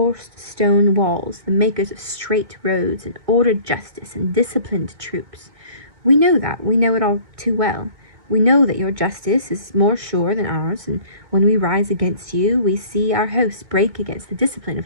stone walls, the makers of straight roads and ordered justice and disciplined troops. We know that. We know it all too well. We know that your justice is more sure than ours, and when we rise against you, we see our hosts break against the discipline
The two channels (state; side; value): late; left; 2.2 ms